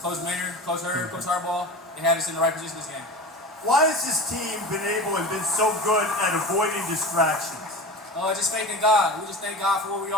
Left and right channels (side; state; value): both; normal; correlation 0.32